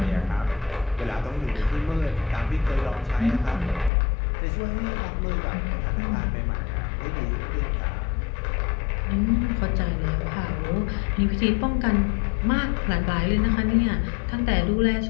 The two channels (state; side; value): drops out; right; at 3.9 s